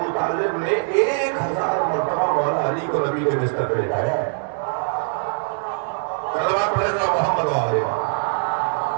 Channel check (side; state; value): left; silent; 61 dB below the other